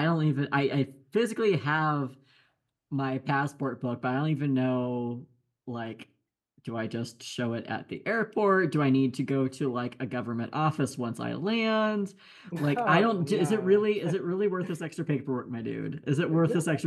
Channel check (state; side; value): identical; both; correlation 1.00